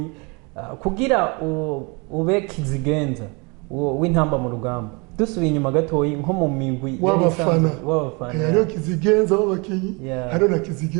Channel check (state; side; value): quieter; left; 29.9 dB